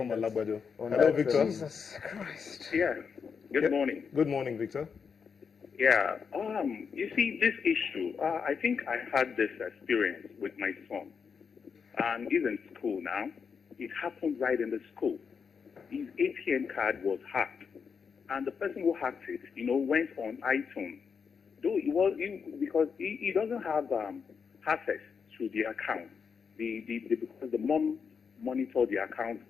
Alabado. Hello, Victor. Jesus Christ. Yeah. Good morning. Good morning, Victor. Yeah. You see, this issue, I think I had this experience with my son. He's in school now. It happened right in the school. His ATM card was hacked. And the person who hacked it, went on iTunes. Though because he doesn't have access to the account. Because the mom monitored the account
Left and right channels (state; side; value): quieter; right; 6.1 dB